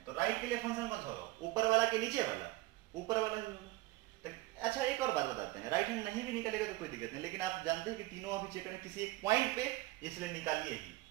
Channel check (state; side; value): quieter; left; 19.3 dB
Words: तो राइट के लिए फंक्शन कौन सा होगा, ऊपर वाला कि नीचे वाला, ऊपर वाला ही होगा। तो अच्छा एक और बात बताते हैं, राइट हैंड नहीं भी निकलेगा तो कोई दिक्कत नहीं, लेकिन आप जानते हैं कि तीनों अभी चेक करें किसी एक पॉइंट पे, इसलिए निकालिए ही।